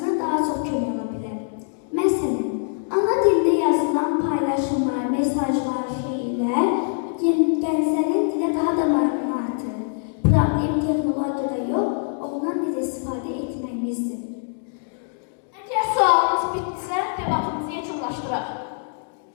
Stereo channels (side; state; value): right; silent; digital silence